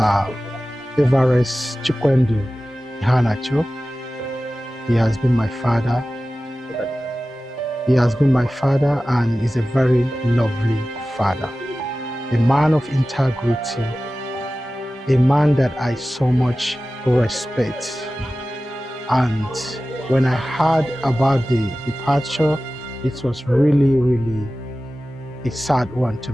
Everest Iheanacho. He has been my father. He has been my father and is a very lovely father. A man of integrity, a man that I so much respect. And when I heard about the departure, it was really, really a sad one to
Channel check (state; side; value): normal; both; correlation 0.96